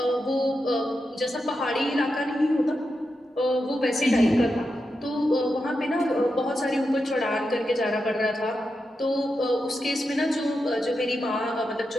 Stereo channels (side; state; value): both; normal; correlation 0.88